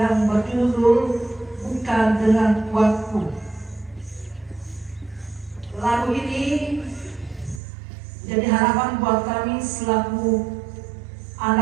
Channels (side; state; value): left; drops out; at 7.6 s